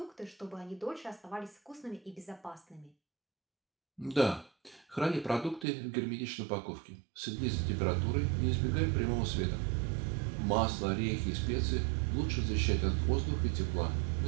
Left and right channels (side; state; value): left; drops out; at 5.7 s